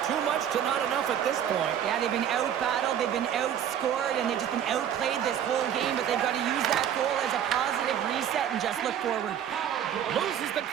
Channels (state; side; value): quieter; left; 9.6 dB